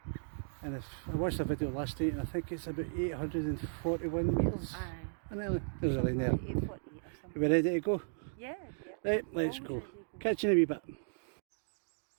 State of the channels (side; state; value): left; silent; digital silence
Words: And if I watched the video last night, and I think it's about 841 metres. And then there's a line there. 840 or something. Are we ready to go? Yeah. Right, let's go. Catch you in a wee bit.